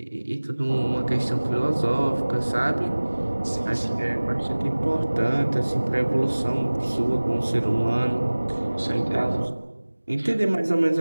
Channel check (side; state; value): both; inverted; correlation -1.00